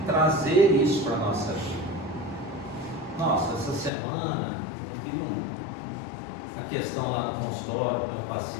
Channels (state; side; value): drops out; right; at 3.9 s